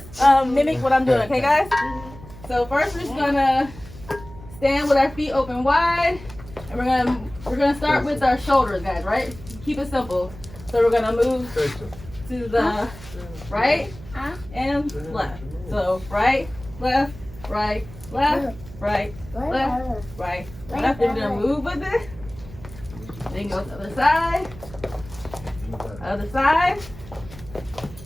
wide, and we're gonna start with our shoulders, guys. Right? Keep it simple. So we're gonna move to the right and left. So right, left, right, left, right, left, right, left. Then we're gonna move with it. Then go to the other side,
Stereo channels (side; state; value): right; noise; hum, 17 dB below the sound